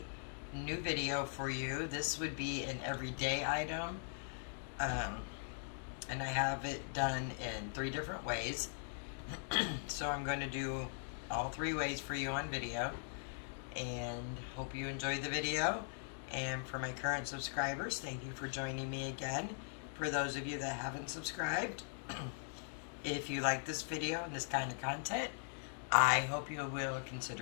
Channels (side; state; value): right; silent; digital silence